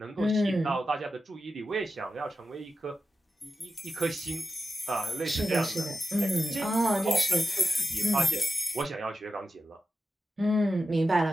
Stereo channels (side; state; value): both; normal; correlation 0.92